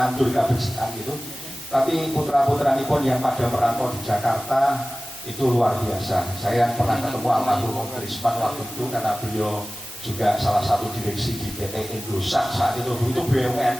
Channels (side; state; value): both; normal; correlation 0.97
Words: kebersihan gitu. Tapi putra-putra pun yang pada merantau di Jakarta itu luar biasa. Saya pernah ketemu almarhum Om Trisman waktu itu karena beliau juga salah satu direksi di PT Indosat saat itu